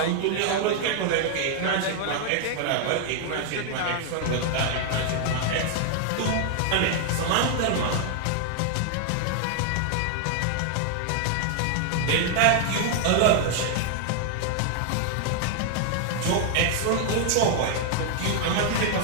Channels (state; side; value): different; both; correlation 0.00